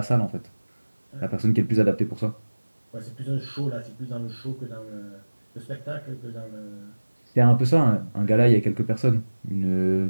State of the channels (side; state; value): both; inverted; correlation -1.00